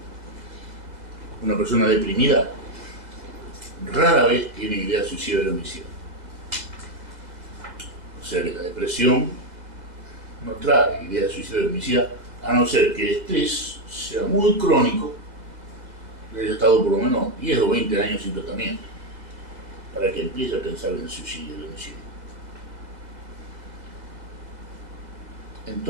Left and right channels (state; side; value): late; left; 2.0 ms